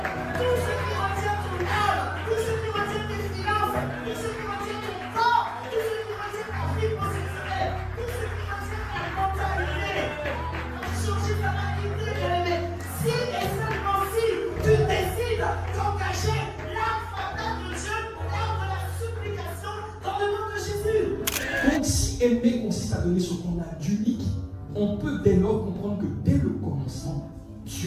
Tout ce qui retient ton âme, tout ce qui retient tes finances, tout ce qui retient ton corps, tout ce qui retient ta vie positionnelle, tout ce qui retient ta mentalité. Changer ta mentalité, bien-aimé. Si et seulement si tu décides d'engager l'âme fatale de Dieu, l'âme de la supplication dans le nom de Jésus. Donc si aimer consiste à donner ce qu'on a d'unique, on peut dès lors comprendre que dès le commencement,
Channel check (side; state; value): both; identical; correlation 1.00